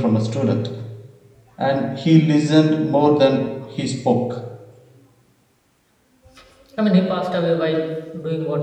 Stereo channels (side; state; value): both; identical; correlation 1.00